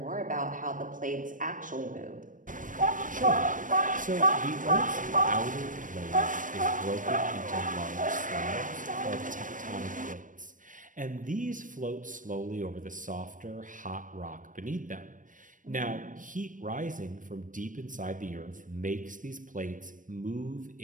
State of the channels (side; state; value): left; late; 0.38 ms